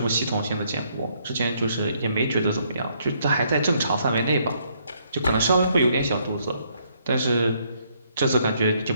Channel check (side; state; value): both; inverted; correlation -0.70